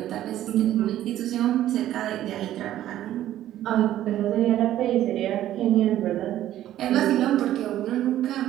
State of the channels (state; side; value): quieter; left; 12.8 dB